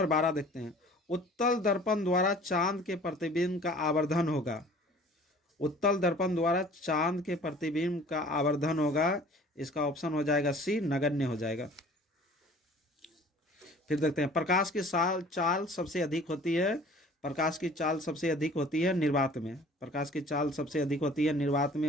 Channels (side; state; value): both; normal; correlation 0.49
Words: 12 देखते हैं, उत्तल दर्पण द्वारा चांद के प्रतिबिंब का आवर्धन होगा। उत्तल दर्पण द्वारा चांद के प्रतिबिंब का आवर्धन होगा, इसका ऑप्शन हो जाएगा सी, नगण्य हो जाएगा। फिर देखते हैं, प्रकाश की चाल सबसे अधिक होती है, प्रकाश की चाल सबसे अधिक होती है निर्वात में। प्रकाश की चाल सबसे अधिक होती है निर्वात में,